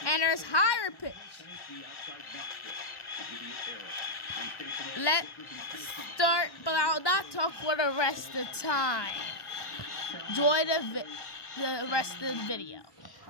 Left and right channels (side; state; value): right; late; 1.1 ms